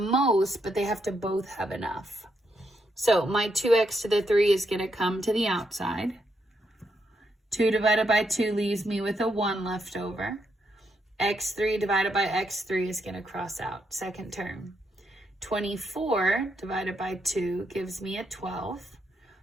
but they have to both have enough. So my 2x to the 3 is going to come to the outside. 2 divided by 2 leaves me with a 1 left over. x3 divided by x3 is going to cross out, second term. 24 divided by 2 gives me a 12.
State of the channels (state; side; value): normal; both; correlation 0.79